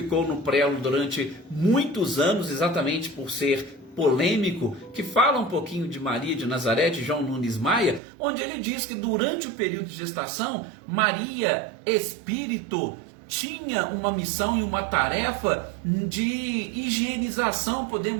no prelo durante muitos anos, exatamente por ser polêmico, que fala um pouquinho de Maria de Nazaré, de João Nunes Maia, onde ele diz que durante o período de gestação, Maria, espírito, tinha uma missão e uma tarefa de higienização,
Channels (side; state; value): left; drops out; at 8.0 s